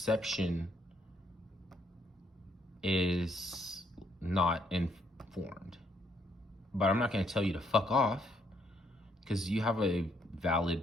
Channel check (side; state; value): both; normal; correlation 0.71